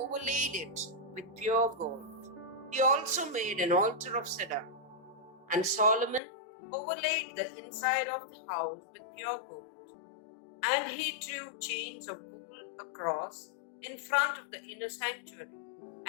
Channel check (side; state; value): right; drops out; at 6.2 s